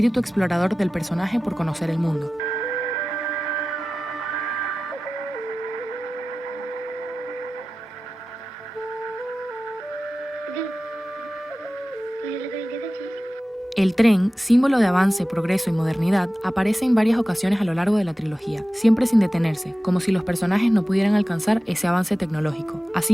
explorador del personaje por conocer el mundo. El tren, símbolo de avance, progreso y modernidad, aparece en varias ocasiones a lo largo de la trilogía, siempre sin detenerse, como si los personajes no pudieran alcanzar ese avance tecnológico.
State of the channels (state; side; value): normal; both; correlation 0.96